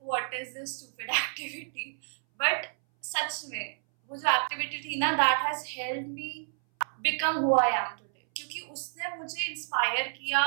what is this stupid activity, but सच में वो जो एक्टिविटी थी ना, that has helped me become who I am today, क्योंकि उसने मुझे इंस्पायर किया,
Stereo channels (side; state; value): left; silent; 58 dB below the other